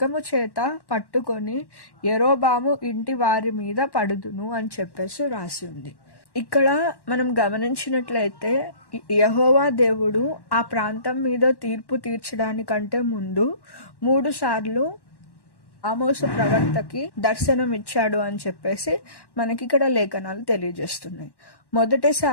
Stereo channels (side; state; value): right; late; 1.1 ms